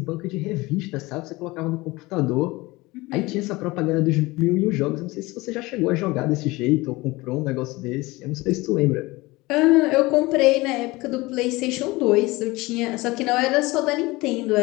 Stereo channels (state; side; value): quieter; right; 21.5 dB